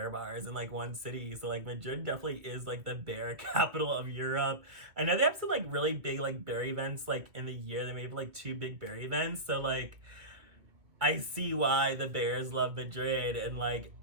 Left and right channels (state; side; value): late; left; 2.2 ms